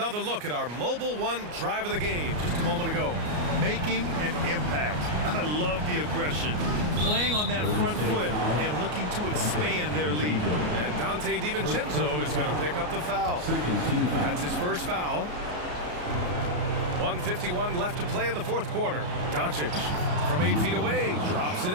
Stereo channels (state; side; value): late; left; 33 ms